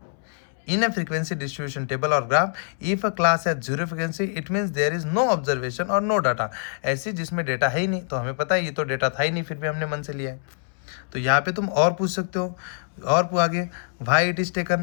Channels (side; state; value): right; silent; 62 dB below the other